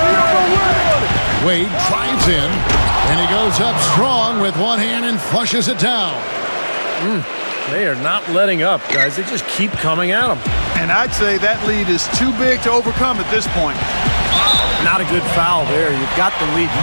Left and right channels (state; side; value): inverted; both; correlation -1.00